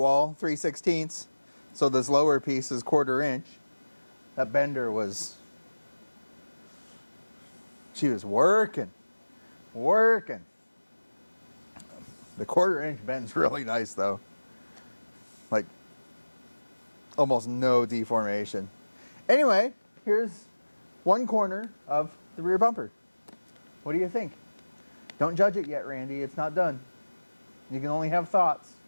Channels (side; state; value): both; inverted; correlation -1.00